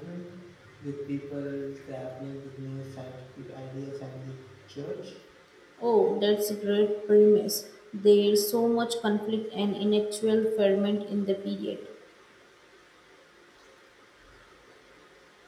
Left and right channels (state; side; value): identical; both; correlation 1.00